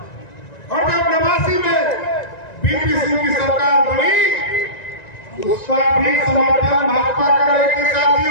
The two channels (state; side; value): late; right; 1.9 ms